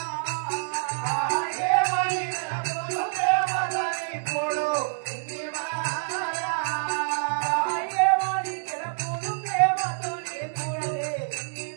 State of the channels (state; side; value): silent; left; digital silence